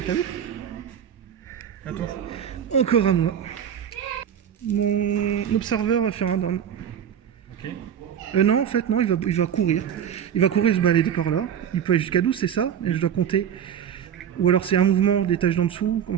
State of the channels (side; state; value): left; quieter; 8.9 dB